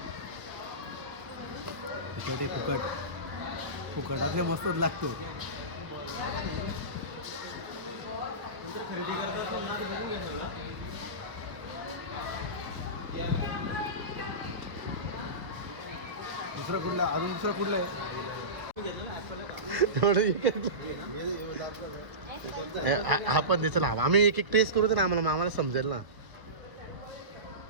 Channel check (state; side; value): late; left; 1.0 ms